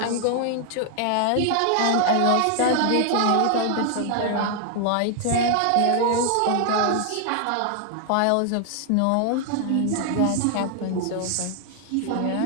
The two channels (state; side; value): different; both; correlation 0.00